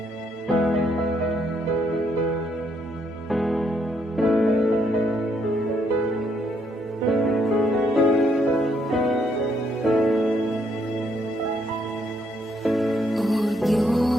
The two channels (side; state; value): both; normal; correlation 0.72